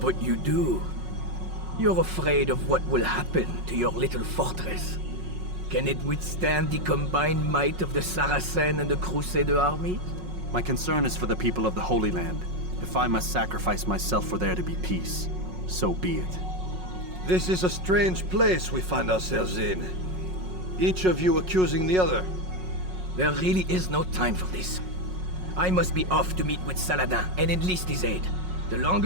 you do. You're afraid of what will happen to your little fortress. Can it withstand the combined might of the Saracen and the Crusader armies? My concern is for the people of the Holy Land. If I must sacrifice myself for there to be peace, so be it. This is a strange place we find ourselves in. Each of you accusing the other. There really is no time for this. I must be off to meet with Saladin and enlist his aid. The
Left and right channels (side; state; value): left; late; 5.5 ms